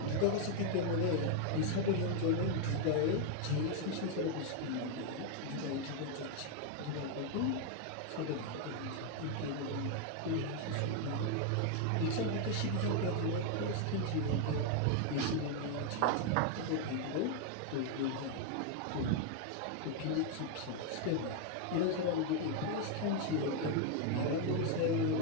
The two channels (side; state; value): both; different; correlation 0.00